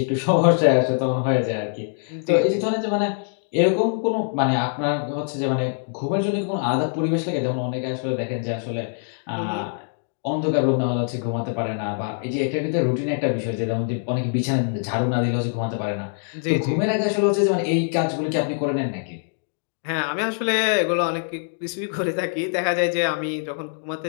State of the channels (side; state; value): right; silent; digital silence